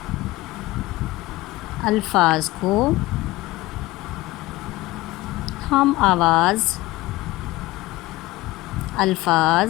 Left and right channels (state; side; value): quieter; right; 18.7 dB